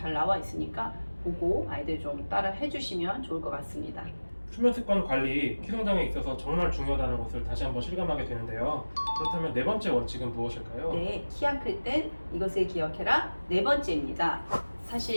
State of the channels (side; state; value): both; inverted; correlation -1.00